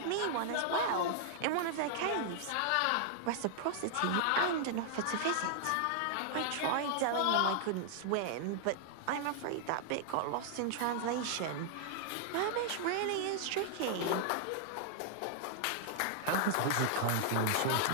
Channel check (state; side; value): different; both; correlation -0.01